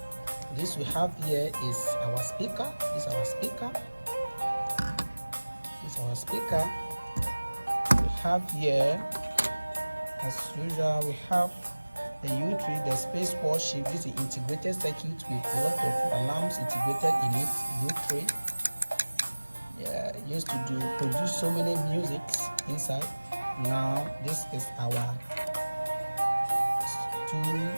we have here is our speaker. This is our speaker. We have here, as usual, we have the U3, the space worship. This is integrated circuit with a lot of alarms integrated in it. U3. Yeah, used to produce so many musics inside. Now this is our 2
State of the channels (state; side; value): inverted; both; correlation -1.00